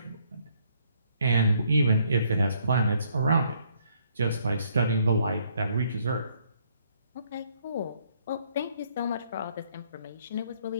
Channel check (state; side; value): inverted; both; correlation -0.67